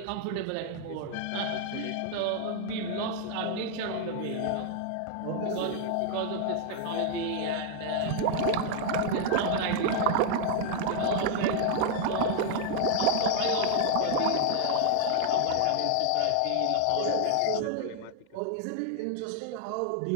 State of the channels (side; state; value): both; different; correlation 0.00